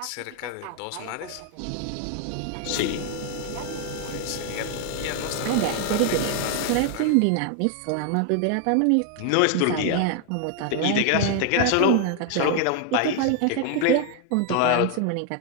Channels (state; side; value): different; both; correlation 0.00